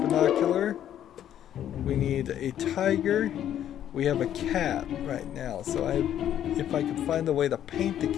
We need a tiger. We have a cat right now, so if I could find a way to paint the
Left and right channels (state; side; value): quieter; right; 10.7 dB